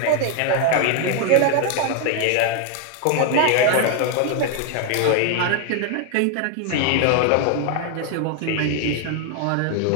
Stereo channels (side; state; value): both; different; correlation 0.00